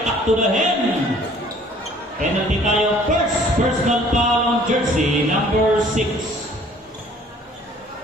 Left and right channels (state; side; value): normal; both; correlation 0.55